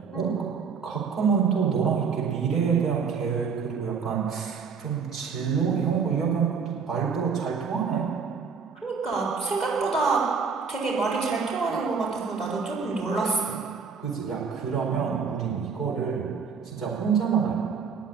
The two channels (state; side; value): quieter; left; 5.7 dB